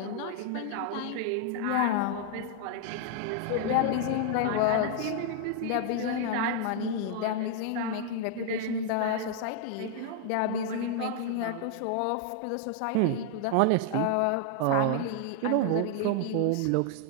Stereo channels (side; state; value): both; different; correlation 0.00